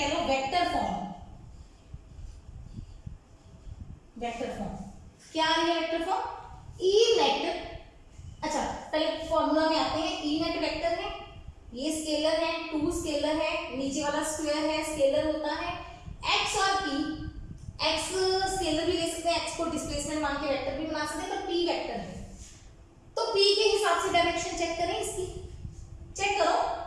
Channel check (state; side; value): identical; both; correlation 1.00